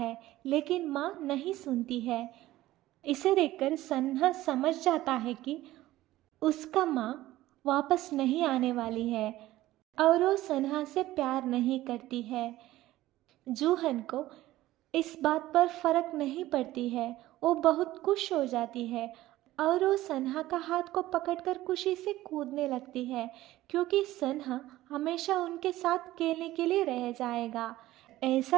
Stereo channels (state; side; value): quieter; left; 16.0 dB